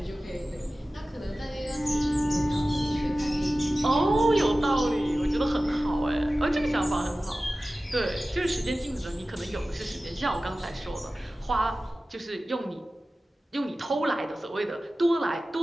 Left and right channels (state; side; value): normal; both; correlation 0.96